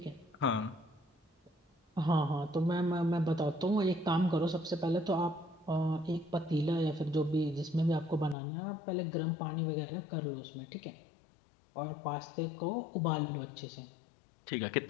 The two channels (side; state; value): right; drops out; at 8.3 s